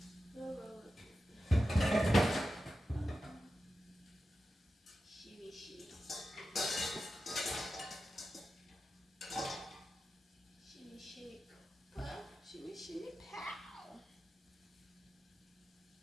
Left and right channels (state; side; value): normal; both; correlation 0.92